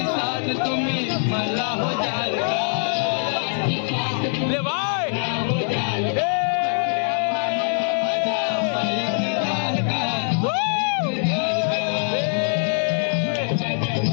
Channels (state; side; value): silent; right; 64 dB below the other